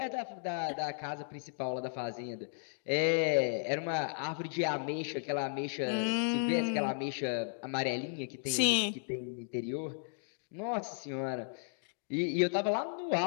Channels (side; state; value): right; silent; digital silence